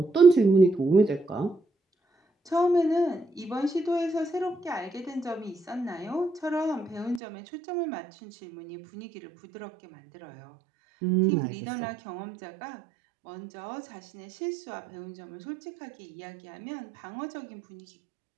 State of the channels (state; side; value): drops out; left; at 7.2 s